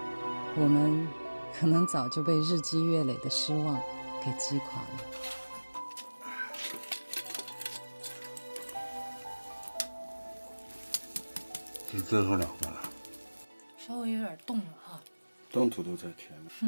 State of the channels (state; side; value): inverted; both; correlation -1.00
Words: 我们可能早就被日积月累的失望给击垮了。是最后2个了，稍微有点冻了哈。冻土都在甜了。